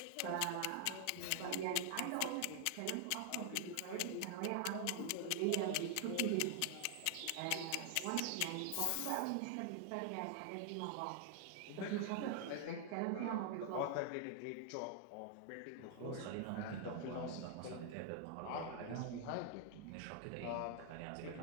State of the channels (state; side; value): different; both; correlation 0.00